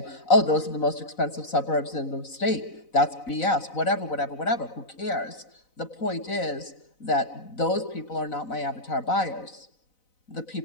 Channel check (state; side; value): late; right; 4.0 ms